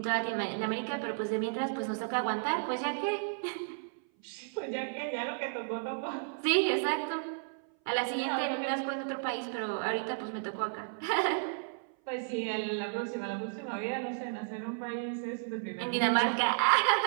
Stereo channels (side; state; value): left; silent; 56 dB below the other